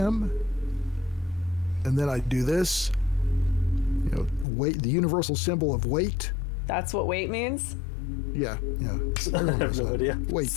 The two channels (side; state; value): right; drops out; at 4.5 s